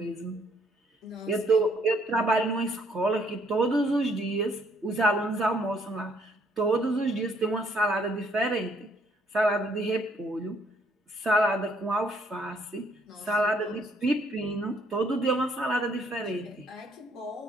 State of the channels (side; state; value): both; normal; correlation 0.66